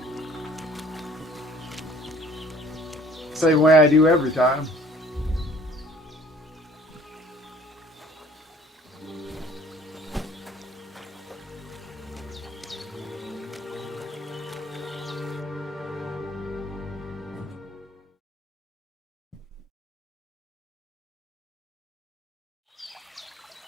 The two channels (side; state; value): both; normal; correlation 0.54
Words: Same way I do every time.